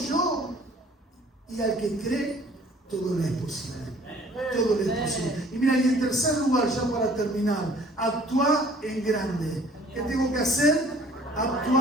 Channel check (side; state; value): both; normal; correlation 0.53